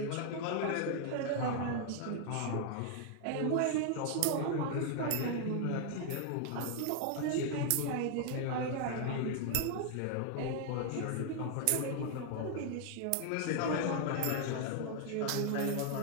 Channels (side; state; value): both; different; correlation 0.00